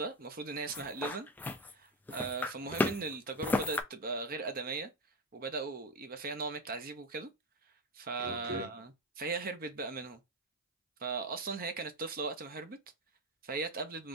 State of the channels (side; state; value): both; normal; correlation 0.18